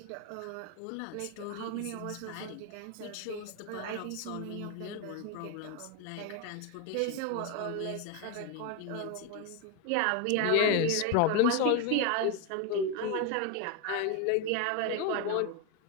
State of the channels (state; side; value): different; both; correlation 0.02